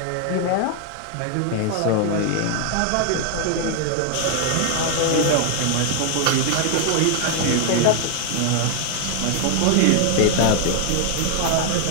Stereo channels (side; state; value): both; different; correlation 0.00